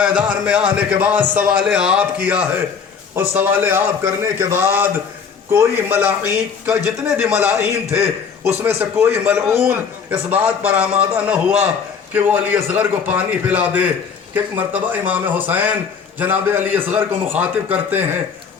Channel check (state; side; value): quieter; right; 6.3 dB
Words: میں آنے کے بعد سوال آپ کیا ہے، اور سوال آپ کرنے کے بعد کوئی ملائین کا جتنے بھی ملائین تھے اس میں سے کوئی ملعون اس بات پر آمادہ نہ ہوا کہ وہ علی اصغر کو پانی پلا دے۔ کہ ایک مرتبہ امام حسین جناب علی اصغر کو مخاطب کرتے ہیں